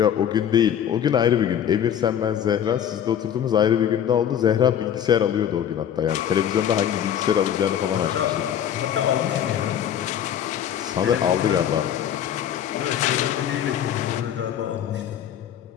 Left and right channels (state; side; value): quieter; right; 9.6 dB